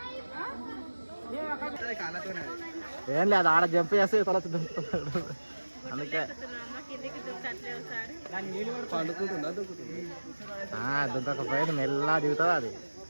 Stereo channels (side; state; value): both; inverted; correlation -1.00